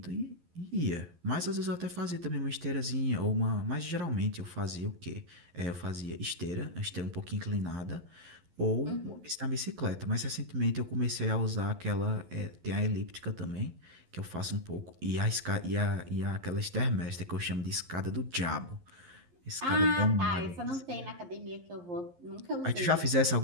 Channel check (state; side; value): late; left; 11 ms